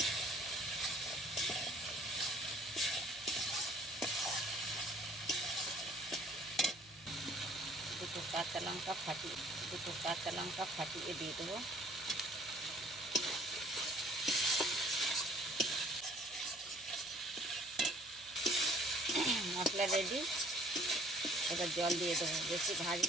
দুটো কাঁচা লঙ্কা ফাটিয়ে দিয়ে দেবো। মশলা রেডি। এবার জল দিয়ে দেবো, বেশি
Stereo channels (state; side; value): noise; right; hum, 26 dB below the sound